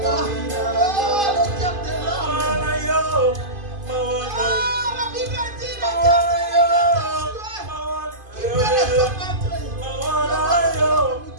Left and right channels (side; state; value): left; late; 2.5 ms